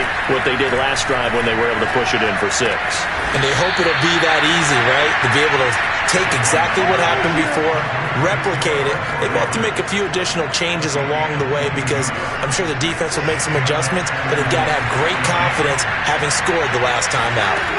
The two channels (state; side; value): identical; both; correlation 1.00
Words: what they did last drive when they were able to push it in for 6. And they hope it'll be that easy, right? To be able to take exactly what happened before, replicate it. They may have to make a few additional changes along the way because I'm sure the defense will make some adjustments, but they've got to have great confidence having scored the last time out.